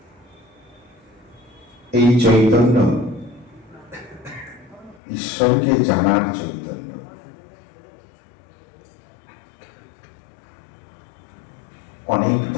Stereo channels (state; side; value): drops out; right; at 5.0 s